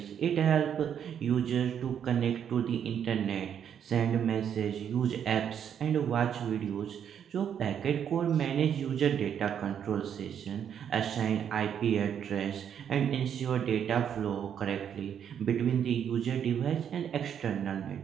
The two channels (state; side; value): quieter; left; 8.6 dB